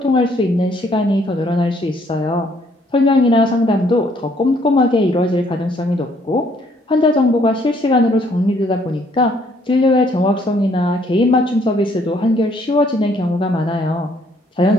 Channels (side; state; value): both; normal; correlation 0.65